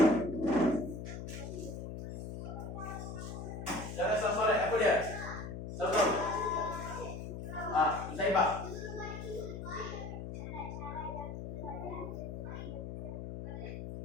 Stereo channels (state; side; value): noise; left; hum, 7 dB below the sound